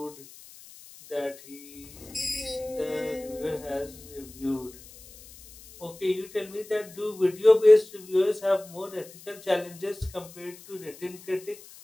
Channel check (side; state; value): left; noise; hiss, 20 dB below the sound